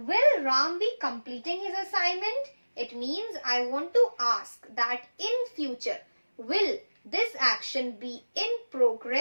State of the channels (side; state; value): both; inverted; correlation -1.00